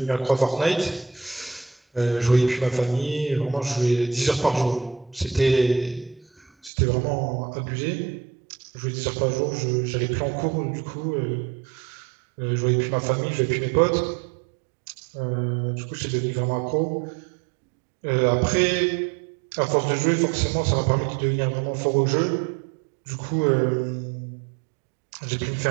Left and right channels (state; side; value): drops out; left; at 6.7 s